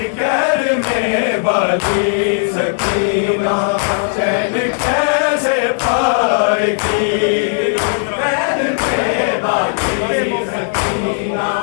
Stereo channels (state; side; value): silent; right; digital silence